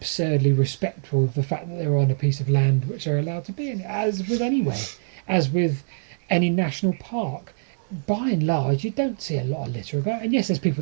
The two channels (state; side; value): silent; left; 62 dB below the other